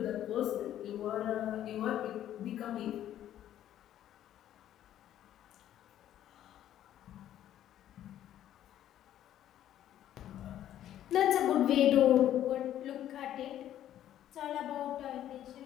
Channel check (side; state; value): right; quieter; 11.7 dB